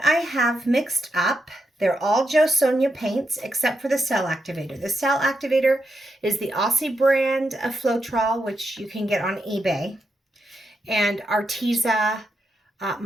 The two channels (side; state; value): both; normal; correlation 0.84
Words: I have mixed up, they're all JoSonja paints except for the cell activator. The cell activator is the Aussie brand of Floetrol, which you can get on eBay, and Arteza